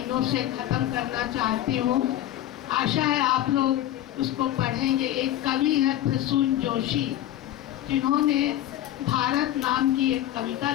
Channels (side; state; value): right; quieter; 13.0 dB